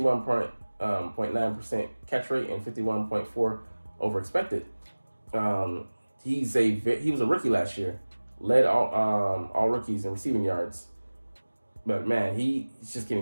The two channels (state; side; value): inverted; both; correlation -1.00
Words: catch rate and 51.4 over expected. He was a rookie last year, led all rookies in receiving yards. But man, he's just